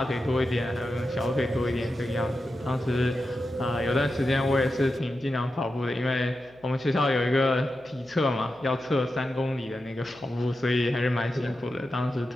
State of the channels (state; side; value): noise; left; hum, 28 dB below the sound